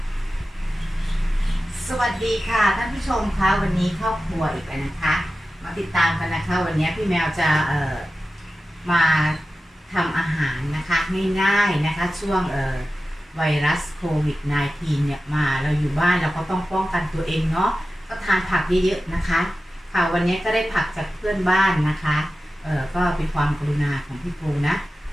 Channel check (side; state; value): both; normal; correlation 0.94